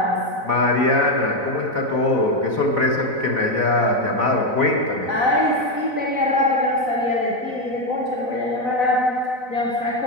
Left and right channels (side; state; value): left; late; 4.0 ms